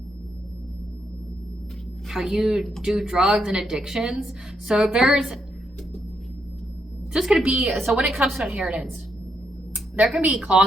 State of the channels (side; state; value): both; normal; correlation 0.79